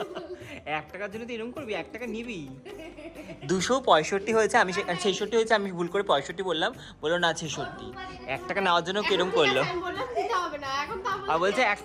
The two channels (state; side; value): identical; both; correlation 1.00